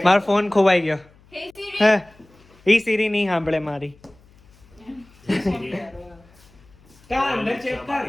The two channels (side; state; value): left; noise; hum, 28 dB below the sound